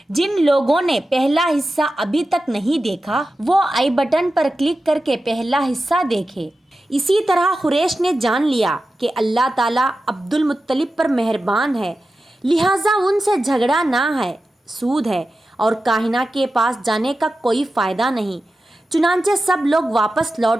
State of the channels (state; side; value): normal; both; correlation 0.93